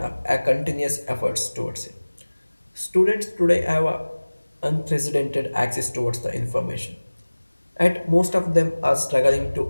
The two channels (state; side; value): inverted; both; correlation -1.00